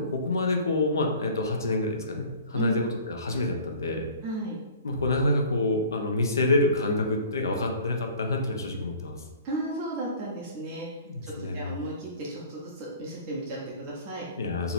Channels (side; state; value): both; inverted; correlation -0.47